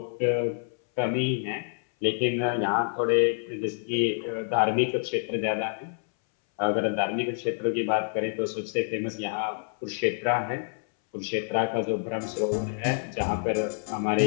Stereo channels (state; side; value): silent; right; 60 dB below the other